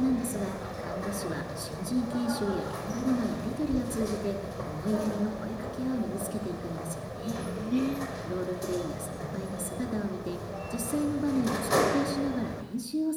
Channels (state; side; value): identical; both; correlation 1.00